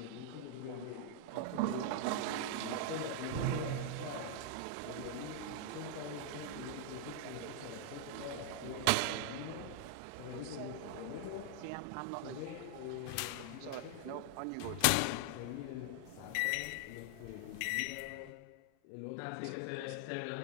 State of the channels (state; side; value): different; both; correlation 0.00